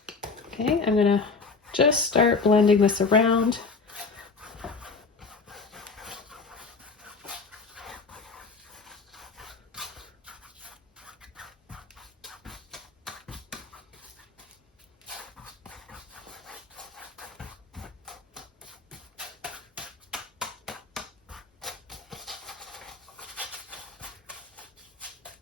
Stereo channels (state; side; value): quieter; right; 4.4 dB